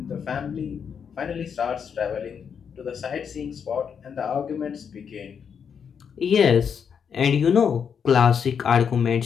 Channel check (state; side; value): quieter; right; 7.1 dB